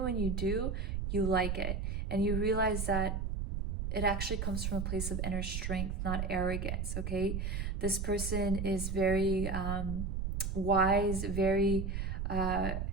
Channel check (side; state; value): right; noise; rumble, 2 dB below the sound